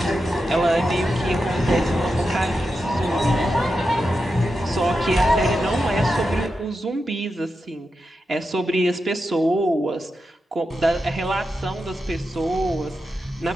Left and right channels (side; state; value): both; normal; correlation 0.89